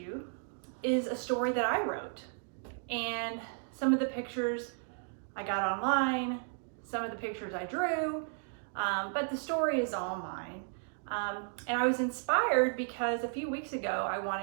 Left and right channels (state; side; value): silent; left; 55 dB below the other